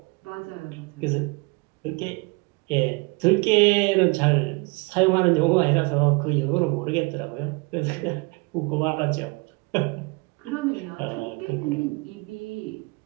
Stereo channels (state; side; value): quieter; left; 28.7 dB